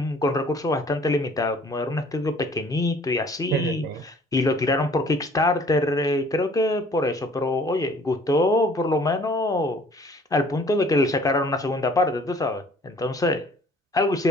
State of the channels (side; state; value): both; normal; correlation 0.55